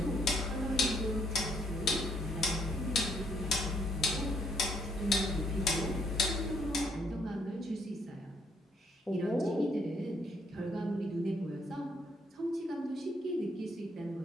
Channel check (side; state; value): both; normal; correlation 0.70